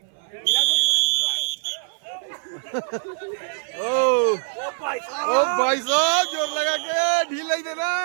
ओ भाई साहब, जोर लगा के ढील नहीं देना,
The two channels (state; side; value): silent; left; 56 dB below the other